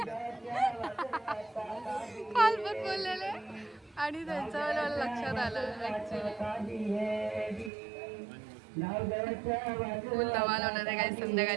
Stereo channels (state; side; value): drops out; left; at 7.7 s